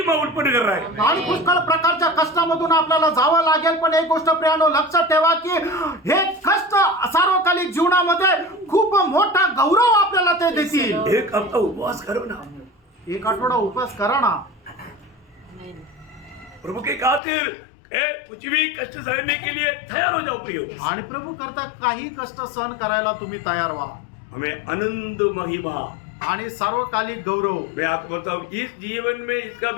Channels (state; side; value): drops out; right; at 17.2 s